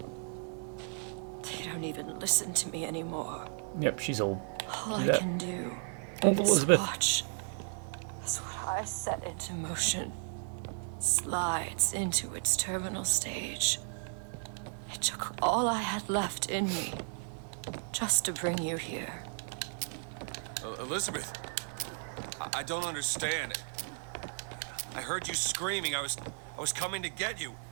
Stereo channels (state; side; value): silent; left; 55 dB below the other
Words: They don't even listen to me anymore. Yep, she's old. All Do I that. can do Old is Elizabeth. watch as what I set into motion slides into its terminal stage. It took all I had left in me just to bring you here. Elizabeth, I don't understand. I heard you screaming. I was coming to get you.